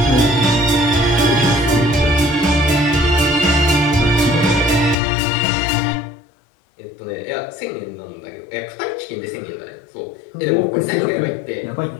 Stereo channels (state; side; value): drops out; right; at 5.0 s